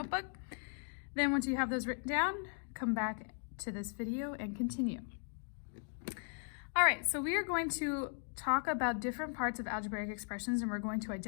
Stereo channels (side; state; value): right; silent; 53 dB below the other